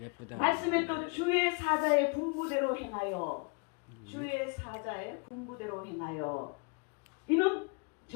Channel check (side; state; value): right; quieter; 33.7 dB